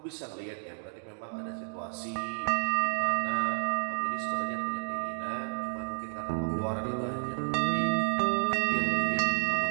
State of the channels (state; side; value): silent; left; 57 dB below the other